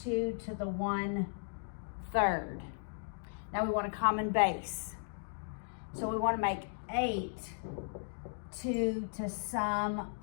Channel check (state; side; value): silent; right; digital silence